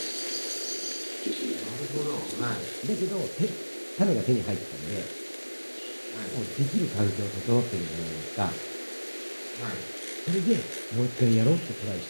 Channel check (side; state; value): both; inverted; correlation -1.00